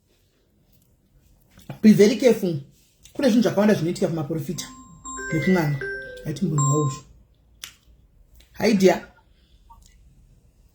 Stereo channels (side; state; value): both; identical; correlation 1.00